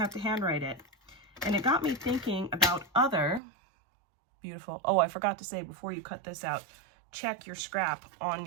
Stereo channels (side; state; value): left; drops out; at 3.4 s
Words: to handwrite it. And it got me thinking about other beautiful, oh, I forgot to say before you cut this out, check your scrap on